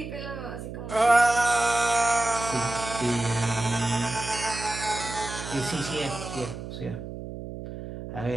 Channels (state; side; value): noise; right; hum, 9 dB below the sound